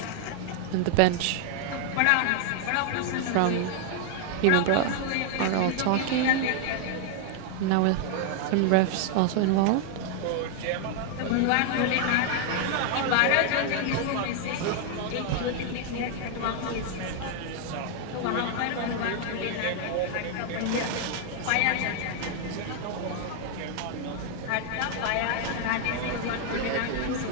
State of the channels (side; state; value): both; different; correlation 0.00